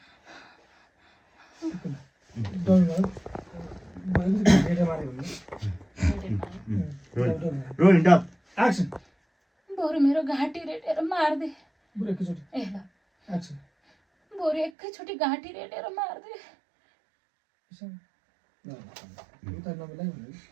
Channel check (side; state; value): left; drops out; at 14.7 s